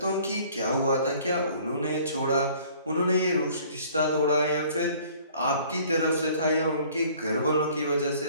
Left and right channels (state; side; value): inverted; both; correlation -0.54